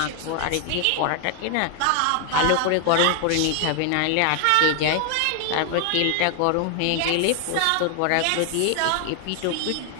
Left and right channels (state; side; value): different; both; correlation 0.00